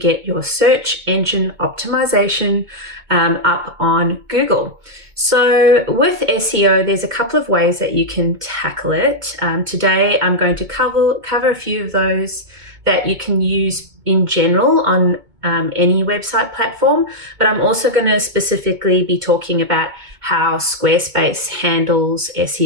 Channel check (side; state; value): left; late; 2.2 ms